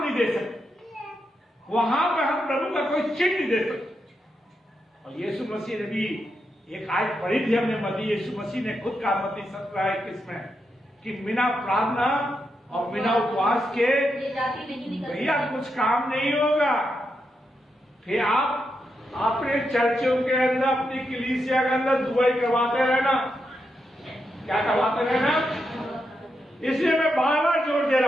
नहीं दे सकते, वहां पर हम प्रभु का कोई चिन्ह नहीं दे सकते। और यीशु मसीह ने भी एक आयत पढ़ी थी हमने, मती यीशु मसीह ने खुद कहा, मती 17:21 में, कि बिना प्रार्थना और बिना उपवास के भैया कुछ काम नहीं होगा। फिर आप अपने चर्चों के अंदर, अपनी कलीसिया के अंदर दुआई करवाते रहना, क्या करवाते रहना। इसलिए मैं बार बार जोर दे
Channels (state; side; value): normal; both; correlation 0.84